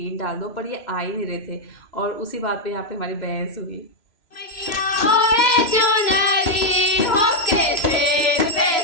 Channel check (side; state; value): right; late; 3.0 ms